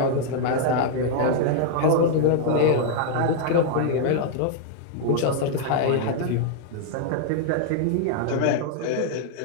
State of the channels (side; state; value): both; different; correlation -0.01